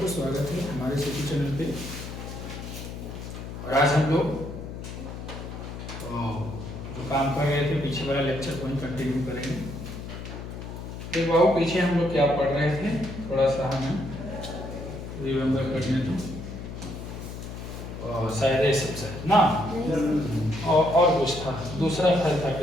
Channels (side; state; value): left; noise; hum, 9 dB below the sound